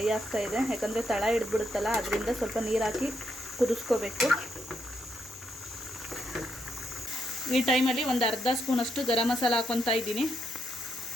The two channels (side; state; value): both; normal; correlation 0.79